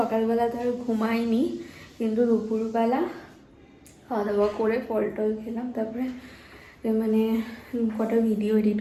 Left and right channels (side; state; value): both; identical; correlation 1.00